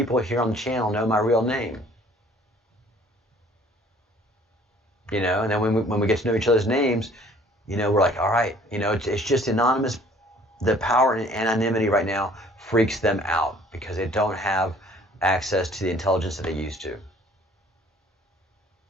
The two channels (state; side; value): normal; both; correlation 0.55